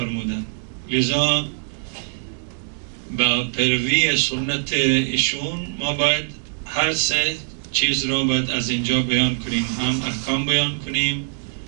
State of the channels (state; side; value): silent; left; digital silence